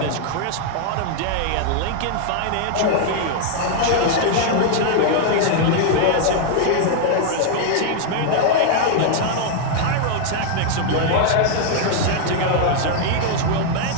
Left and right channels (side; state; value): both; different; correlation 0.00